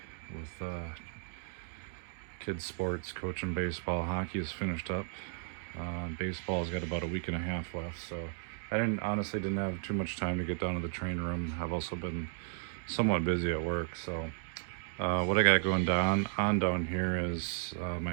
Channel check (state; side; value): silent; left; digital silence